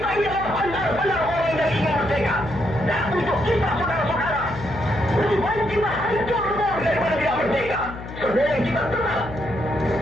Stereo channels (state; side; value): noise; left; hum, 12 dB below the sound